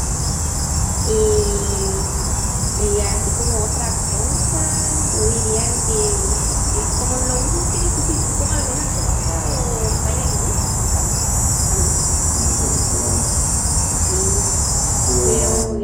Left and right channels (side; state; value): both; identical; correlation 1.00